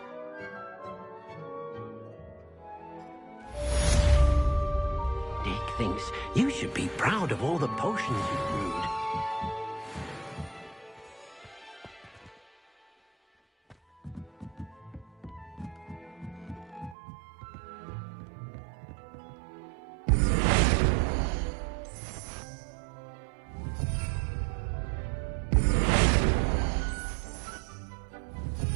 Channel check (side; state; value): left; drops out; at 16.9 s